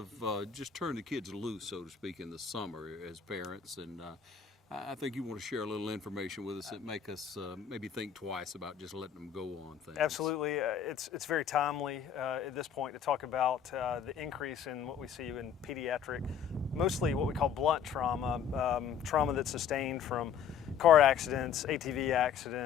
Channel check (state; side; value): quieter; right; 7.8 dB